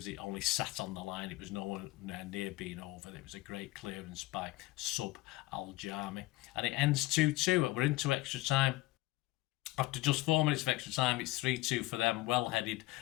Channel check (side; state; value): right; quieter; 19.3 dB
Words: it only sat on the line. It was nowhere near being over. It was a great clearance by Sub Al-Jami. And it ends 2-2. We're into extra time. After just 4 minutes of extra time, it's 3-2 for them, well headed